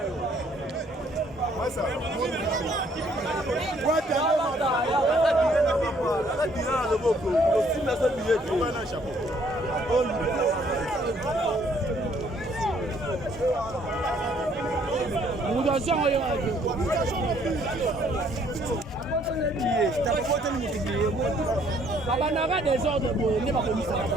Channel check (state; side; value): normal; both; correlation 0.64